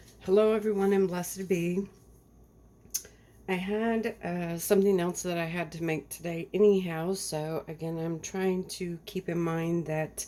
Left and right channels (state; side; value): identical; both; correlation 1.00